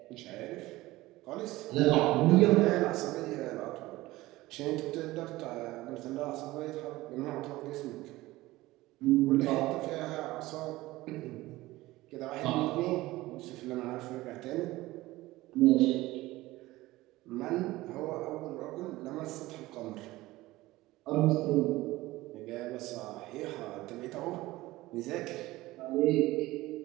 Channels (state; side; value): quieter; left; 18.3 dB